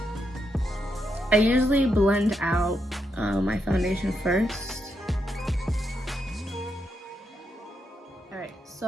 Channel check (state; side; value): normal; both; correlation 0.82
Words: I usually blend out my foundation first. Alright,